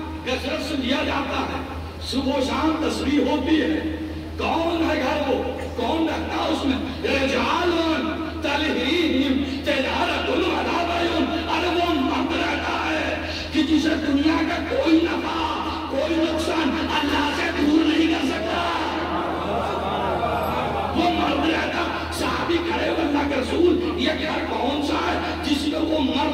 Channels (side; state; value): both; identical; correlation 1.00